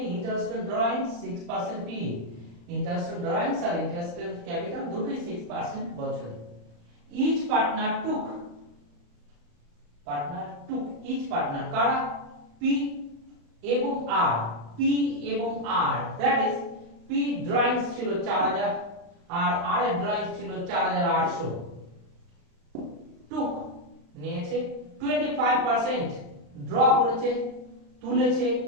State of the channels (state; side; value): late; left; 35 ms